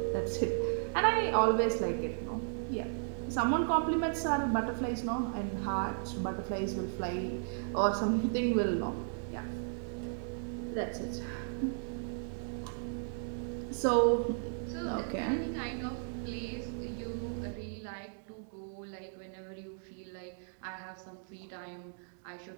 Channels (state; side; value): silent; left; digital silence